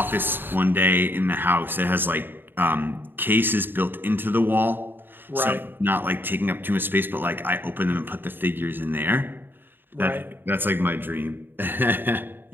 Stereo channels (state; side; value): late; left; 0.097 ms